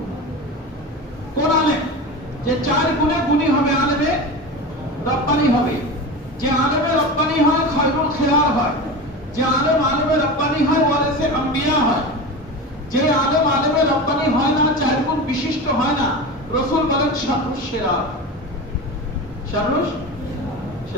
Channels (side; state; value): both; normal; correlation 0.27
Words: কোন আলেম? যে 4 গুণে গুণী হবে, আলেমে রব্বানি হবে। যে আলেমে রব্বানি হয় খায়রুল খিয়ার হয়। যে আলেম আলেমে রব্বানি হয় ওয়ারিসে আম্বিয়া হয়। যে আলেম আলেমে রব্বানি হয় না, 4 গুণ বিশিষ্ট হয় না, রাসূল বলেন শাররুশ শিরা। শাররুশ